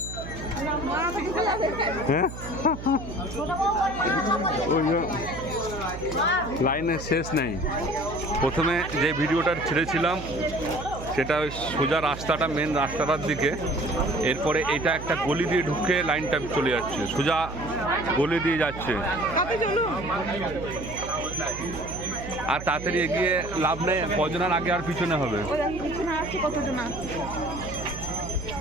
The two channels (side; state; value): right; noise; hum, 10 dB below the sound